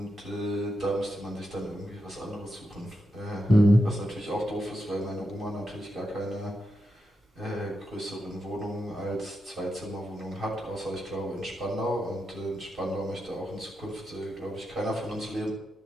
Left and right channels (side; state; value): both; normal; correlation 0.86